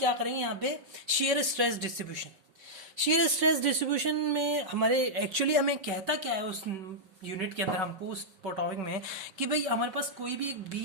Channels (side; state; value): left; late; 5.3 ms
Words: करेंगे यहाँ पे, shear stress distribution. Shear stress distribution में हमारे एक्चुअली हमें कहता क्या है उस यूनिट के अंदर हमको, उस टॉपिक में, कि भाई हमारे पास कोई भी एक